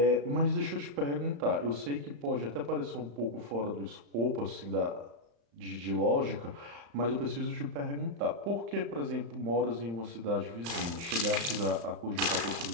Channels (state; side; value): late; left; 35 ms